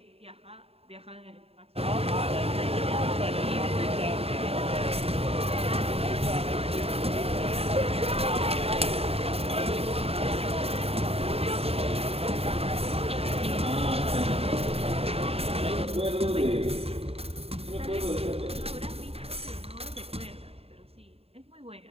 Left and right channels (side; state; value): left; late; 0.29 ms